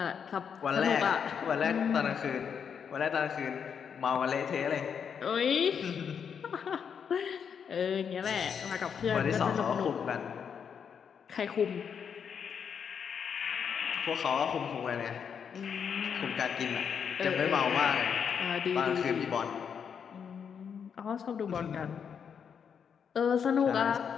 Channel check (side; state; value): right; quieter; 7.2 dB